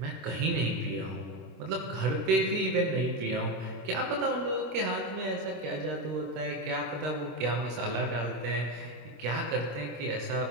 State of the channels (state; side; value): late; left; 24 ms